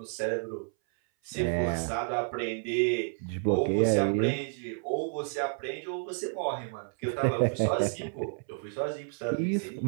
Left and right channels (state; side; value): silent; left; 58 dB below the other